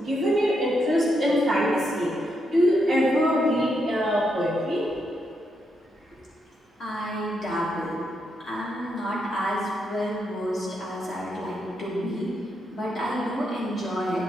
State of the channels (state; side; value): normal; both; correlation 0.80